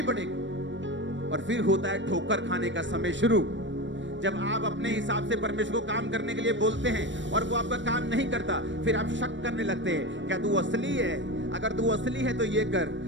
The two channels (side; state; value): left; late; 0.54 ms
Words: पड़ेगी। और फिर होता है ठोकर खाने का समय शुरू, जब आप अपने हिसाब से परमेश्वर को काम करने के लिए बोलते हैं और वो आपका काम नहीं करता, फिर आप शक करने लगते हैं, क्या तू असली है? अगर तू असली है तो ये कर,